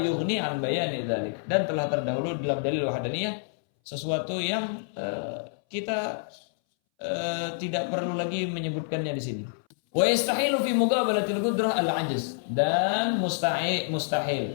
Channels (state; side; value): silent; right; 60 dB below the other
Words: an bayani dzalik. Dan telah terdahulu dalam dalil wahdaniyah sesuatu yang kita tidak perlu lagi menyebutkannya di sini. Wa yastahilu fi muqabalatil qudrah al-'ajz. Dan